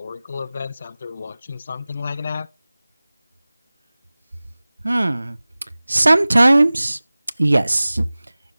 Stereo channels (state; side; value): inverted; both; correlation -0.99